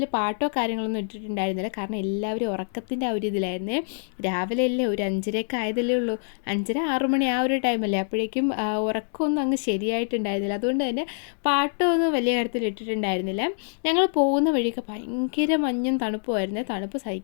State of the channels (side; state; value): right; silent; digital silence